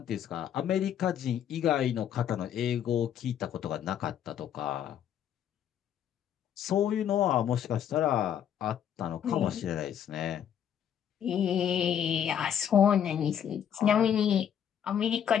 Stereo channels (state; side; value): quieter; right; 9.3 dB